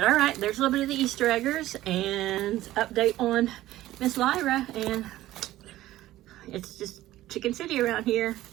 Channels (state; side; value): quieter; left; 15.2 dB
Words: all right, there's a little bit of the Easter eggers and update on Miss Lyra, and it's just Chicken City around here.